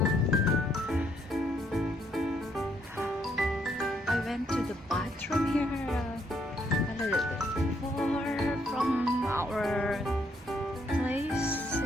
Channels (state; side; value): normal; both; correlation 0.71